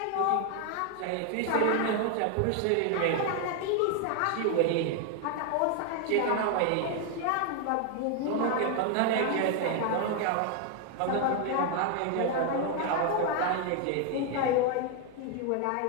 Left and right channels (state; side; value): different; both; correlation 0.01